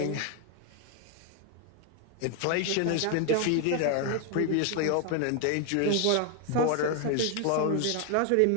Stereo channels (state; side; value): different; both; correlation 0.01